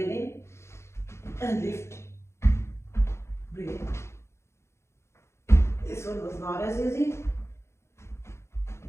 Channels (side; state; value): right; late; 0.13 ms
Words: in and lift. Breathe in. This one was not as easy,